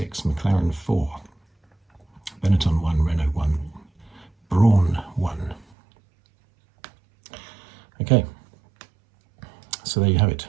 McLaren 4, Benetton 1, Renault 1, Brawn 1. Okay, so there you have it.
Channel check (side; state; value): left; drops out; at 5.7 s